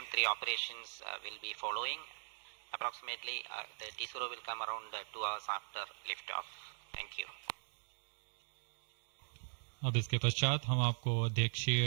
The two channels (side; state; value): left; silent; digital silence